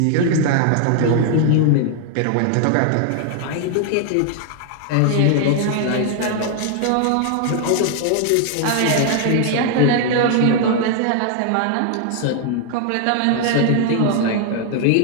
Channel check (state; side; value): different; both; correlation 0.00